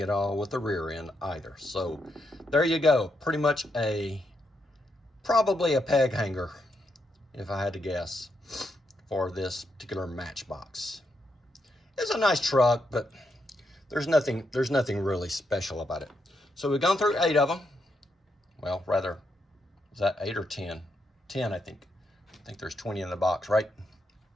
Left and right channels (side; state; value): both; normal; correlation 0.80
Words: at all with the rear end either. So there you go. Pretty much probably a peg hanger, if I had to guess, for this particular Matchbox. It's a nice truck, but there's nothing really special about it. So we've gone through 8 of them. Well, rather, is that 8 or 10? 10, I think. I think there's 20 in the box, right?